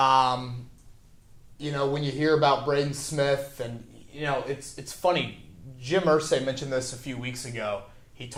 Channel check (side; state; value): both; identical; correlation 1.00